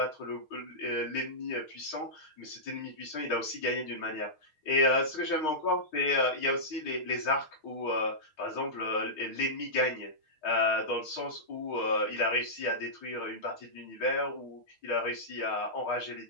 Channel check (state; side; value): late; right; 6.4 ms